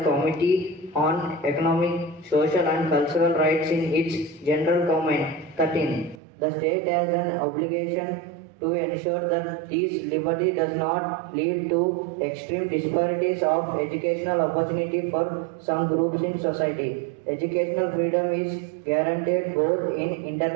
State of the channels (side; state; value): left; drops out; at 6.2 s